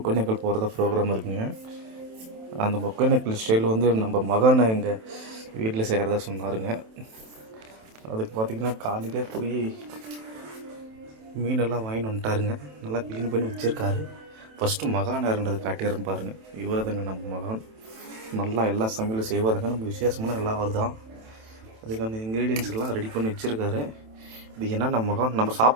ஒகேனக்கல் போகிறதா ப்ரோக்ராம் இருக்குங்க. அந்த ஒகேனக்கல் ஸ்டைல் வந்து நம்ம மகனை எங்கள் வீட்டில் செய்கிறதா சொன்னாருங்க. அதுக்கு பார்த்திங்கன்னா காலையிலே போய் மீனெல்லாம் வாங்கிட்டு வந்துட்டாருங்க. நல்லா க்ளீன் பண்ணி வச்சுருக்காரு. ஃபஸ்ட்டு மகான் யாருன்றது காட்டிடுறேன் பாருங்கள். இவரதுங்க நம்ம மகான். நல்லா எல்லா சமையலும் செய்வாருங்க. நம்ம விசேஷமான எல்லாம் அவர் தான். அதுக்கான இன்க்ரீடியன்ஸ் எல்லாம் ரெடி பண்ணி வச்சுருக்காரு. இது என்ன நம்ம மகான் நம்ம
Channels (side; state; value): left; late; 27 ms